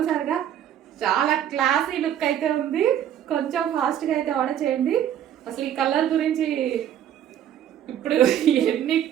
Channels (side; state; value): left; quieter; 10.5 dB